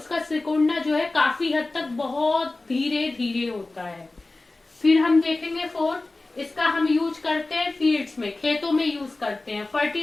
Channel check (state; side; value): quieter; right; 3.1 dB